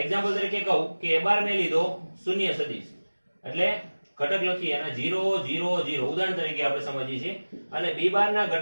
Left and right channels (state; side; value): inverted; both; correlation -1.00